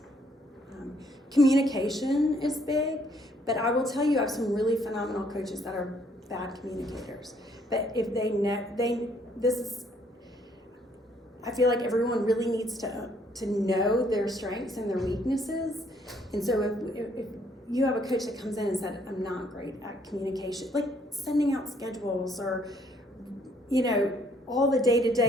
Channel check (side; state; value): both; normal; correlation 0.66